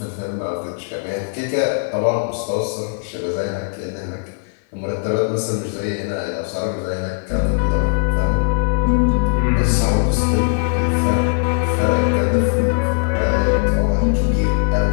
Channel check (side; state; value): right; silent; 55 dB below the other